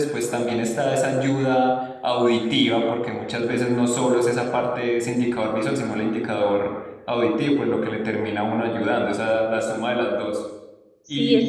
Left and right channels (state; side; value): identical; both; correlation 1.00